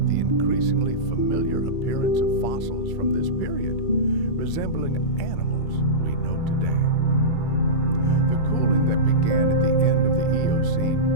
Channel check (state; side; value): late; right; 2.3 ms